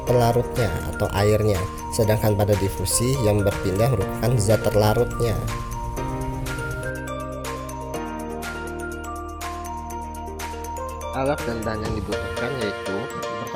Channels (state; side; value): identical; both; correlation 1.00